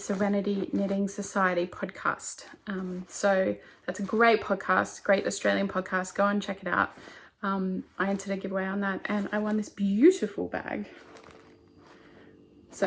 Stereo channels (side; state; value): both; identical; correlation 1.00